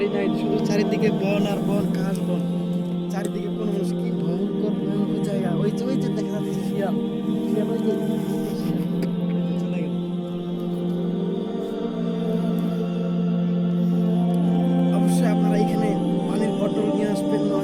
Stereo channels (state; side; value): identical; both; correlation 1.00